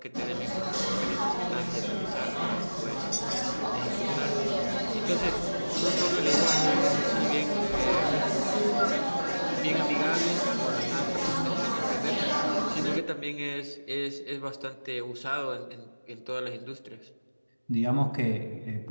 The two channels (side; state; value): both; inverted; correlation -1.00